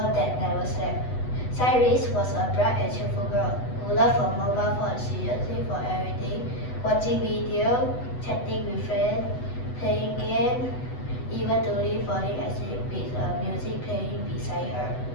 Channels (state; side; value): late; right; 8.1 ms